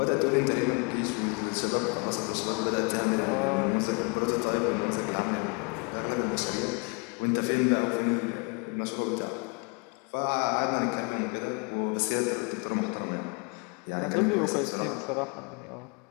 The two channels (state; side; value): quieter; right; 33.9 dB